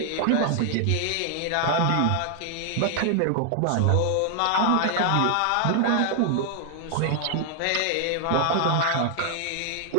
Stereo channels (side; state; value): both; different; correlation 0.00